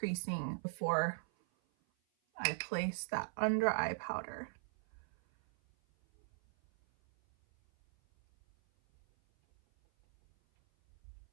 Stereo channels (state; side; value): silent; left; 52 dB below the other